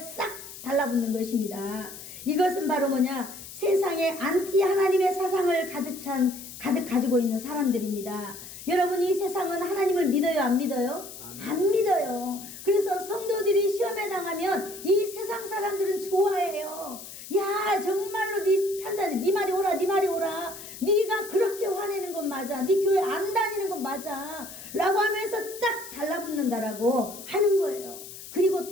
달라붙는 것입니다. 이것은 바로 뭐냐? 세상에 안티 하나님의 사상을 가득 가지고 있는 사람들입니다. 여러분, 이 세상은 하나님을 믿어요, 안 믿어요? 안 믿어요. 그래서 성도들이 시험에 당하면 이 세상 사람들은 좋아해요. 야, 정말로 네 판단이, 네 말이 오라, 네 말이 오라. 네가 그렇게 화내는 건 맞아. 네 교회 안 다니는 건 맞아. 라고 하면서 딱 달라붙는다라고 하는 거예요. 그리고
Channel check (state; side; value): noise; left; hiss, 13 dB below the sound